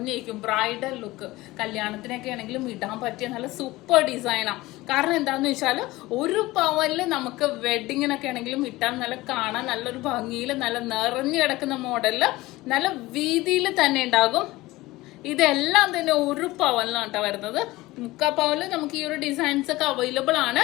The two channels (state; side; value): quieter; right; 19.2 dB